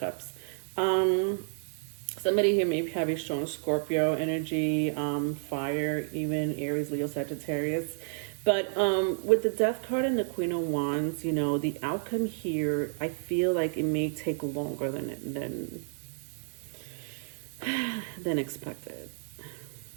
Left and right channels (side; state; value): left; silent; digital silence